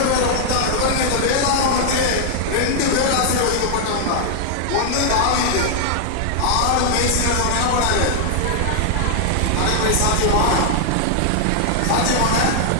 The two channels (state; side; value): different; both; correlation 0.00